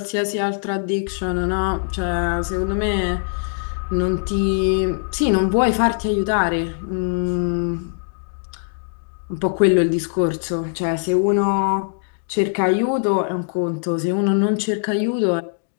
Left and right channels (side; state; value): right; silent; digital silence